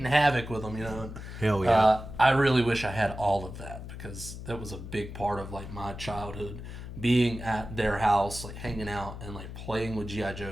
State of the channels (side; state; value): left; noise; hum, 10 dB below the sound